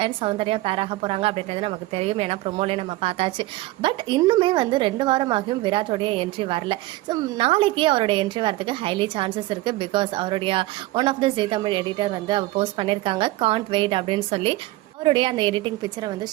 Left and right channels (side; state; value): left; quieter; 18.6 dB